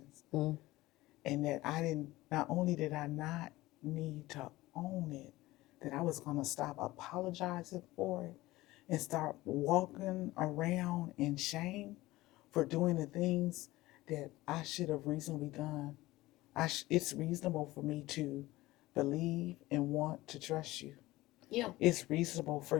Mm-hmm. And that not only did I not need to own it, that I was going to stop apologizing for it and start walking around in shame for doing the things that I should have reasonably done. It's reasonable for me to believe and want to trust you. Yeah. It's reasonable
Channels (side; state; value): right; quieter; 18.4 dB